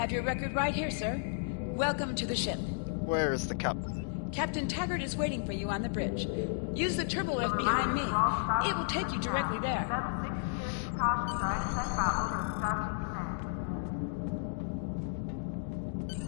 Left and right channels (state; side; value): silent; right; digital silence